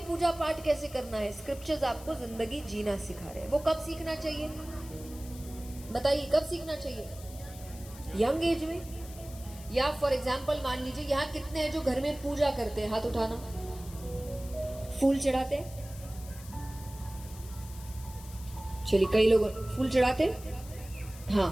पूजा पाठ कैसे करना है, स्क्रिप्चर्स आपको जिंदगी जीना सिखा रहे हैं। वो कब सीखना चाहिए बताइए? कब सीखना चाहिए? यंग एज में? या फॉर एग्जाम्पल मान लीजिए यहाँ कितने हैं जो घर में पूजा करते हैं? हाथ उठाना। फूल चढ़ाते हैं? चलिए, कई लोग फूल चढ़ाते हैं।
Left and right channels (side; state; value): left; noise; hiss, 18 dB below the sound